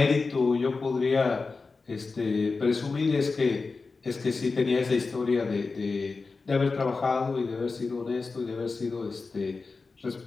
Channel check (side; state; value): right; quieter; 4.2 dB